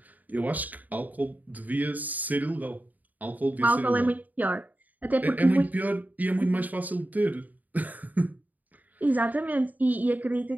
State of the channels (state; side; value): late; left; 0.080 ms